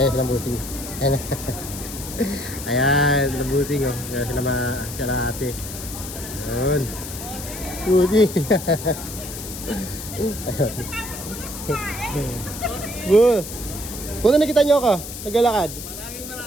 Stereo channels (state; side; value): noise; left; hiss, 10 dB below the sound